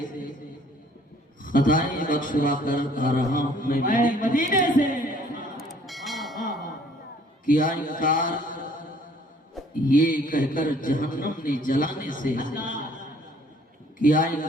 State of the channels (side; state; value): both; normal; correlation 0.58